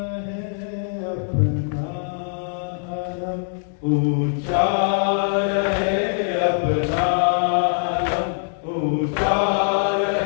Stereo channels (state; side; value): silent; right; digital silence